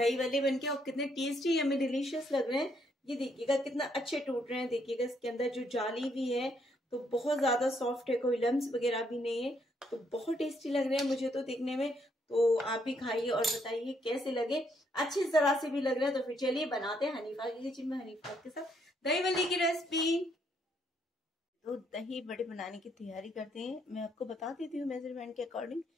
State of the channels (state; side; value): normal; both; correlation 0.72